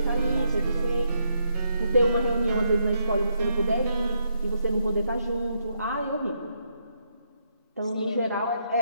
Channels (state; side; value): inverted; both; correlation -0.78